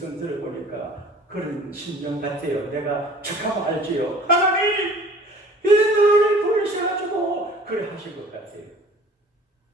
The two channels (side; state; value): both; normal; correlation 0.48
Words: 들어보니까 그런 심정 같아요. 내가 척하면 알지요. 하나님 왜 나를 버리셔가지고 그래 하신 것 같아요.